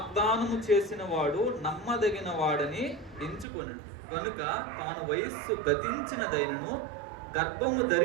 చేసిన వాడు నమ్మదగిన వాడని ఎంచుకొని కనుక తాను వయస్సు గతించినదైనను గర్భము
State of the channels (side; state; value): left; drops out; at 3.5 s